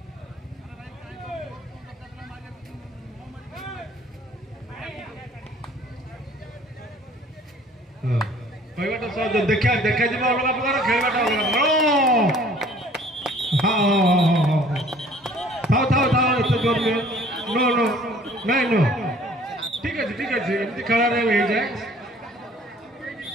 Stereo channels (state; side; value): normal; both; correlation 0.54